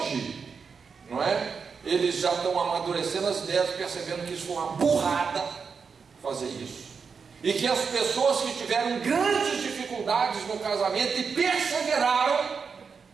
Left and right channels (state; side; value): quieter; left; 5.6 dB